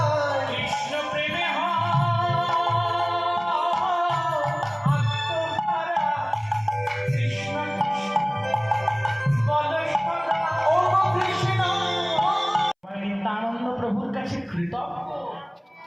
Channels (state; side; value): identical; both; correlation 1.00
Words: কৃষ্ণ প্রেমে আত্মধারা কৃষ্ণ বল সদা ও কৃষ্ণ নিত্যানন্দ প্রভুর কাছে কৃতজ্ঞ।